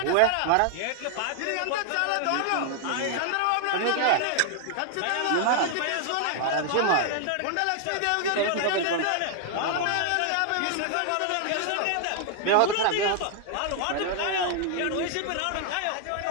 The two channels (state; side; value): different; both; correlation 0.00